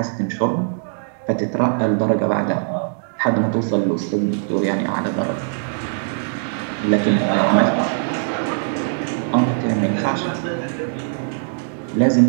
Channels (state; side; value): silent; left; digital silence